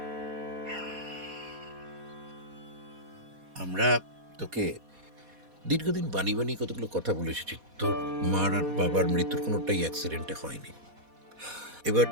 আমরা তোকে দীর্ঘদিন বানি বানি কতগুলো কথা বলে এসেছি। তোর মার আর বাবার মৃত্যুর কোনোটাই অ্যাক্সিডেন্টে হয়নি। এবার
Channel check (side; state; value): left; late; 4.1 ms